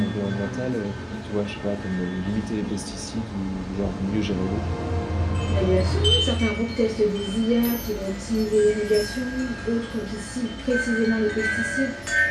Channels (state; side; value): identical; both; correlation 1.00